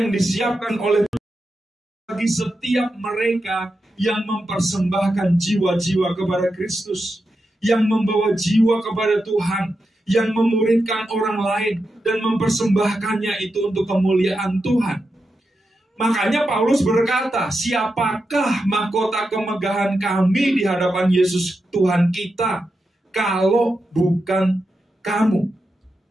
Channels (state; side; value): normal; both; correlation 0.88